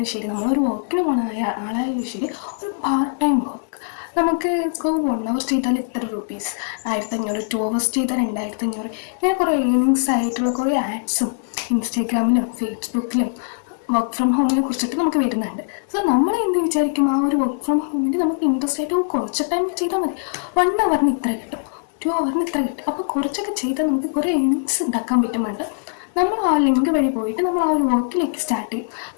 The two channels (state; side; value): silent; right; 61 dB below the other